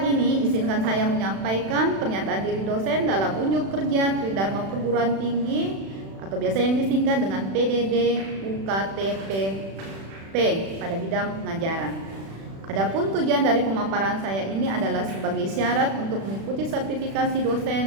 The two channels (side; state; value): left; late; 36 ms